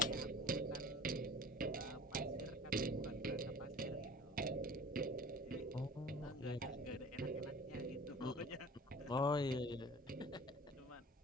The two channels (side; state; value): both; normal; correlation 0.42